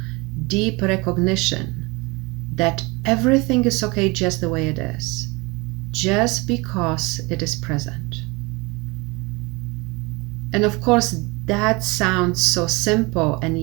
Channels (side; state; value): left; quieter; 25.9 dB